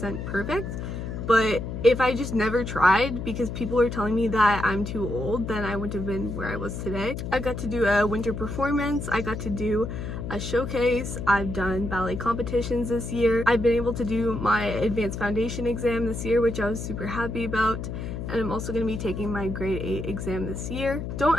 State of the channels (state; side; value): noise; left; hum, 6 dB below the sound